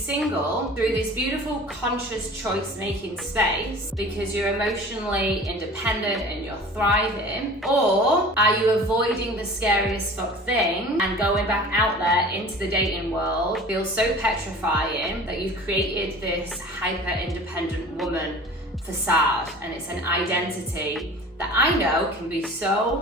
through this beautiful conscious choice-making space because you're emotionally independent and you're thriving? Or are you avoiding the scariest fuck thing and going back out there into the dating world feels so petrifying that you've created this hyper-independent woman facade, and it's an identity that I know can be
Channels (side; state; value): both; normal; correlation 0.42